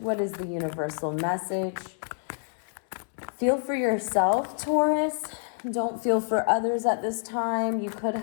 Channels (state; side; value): silent; right; digital silence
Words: is the universal message? Feel for yourself, Taurus. Don't feel for others at this time. You could